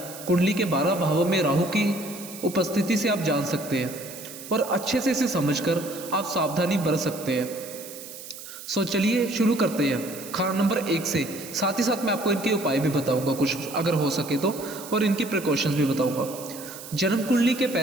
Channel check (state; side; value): noise; right; hiss, 13 dB below the sound